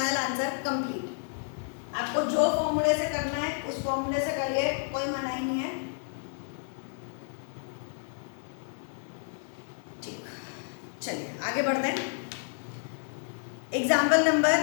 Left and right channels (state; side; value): silent; right; digital silence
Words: आंसर कंप्लीट। आपको जो फॉर्मूले से करना है उस फॉर्मूले से करिए, कोई मना ही नहीं है। ठीक, चलिए आगे बढ़ते हैं। Example number